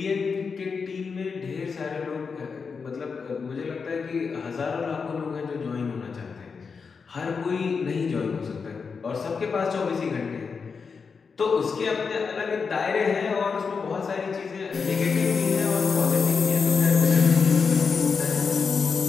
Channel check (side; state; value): right; quieter; 5.4 dB